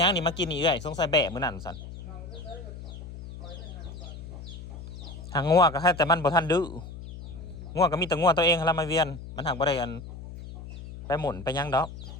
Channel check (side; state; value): left; noise; hum, 12 dB below the sound